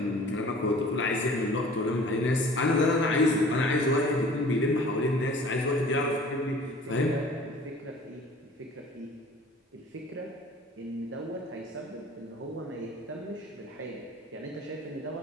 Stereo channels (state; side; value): normal; both; correlation 0.48